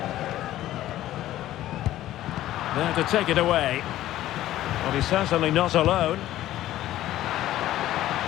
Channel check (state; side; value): quieter; right; 14.0 dB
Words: There to take it away. Well, he's certainly not alone.